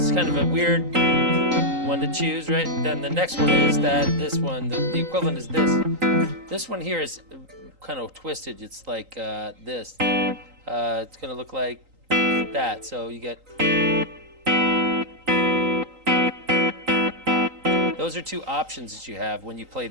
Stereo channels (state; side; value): late; left; 3.9 ms